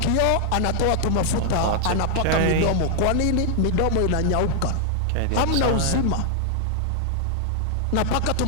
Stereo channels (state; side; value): different; both; correlation 0.00